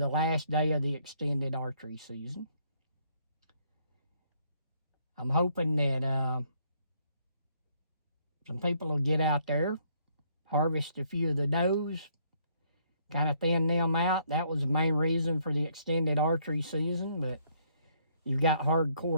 last day of the extended archery season. I'm hoping that some people will get out there, harvest a few of the does, kind of thin them out. That was the main reason for the extended archery season, but you've got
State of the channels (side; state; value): both; inverted; correlation -0.67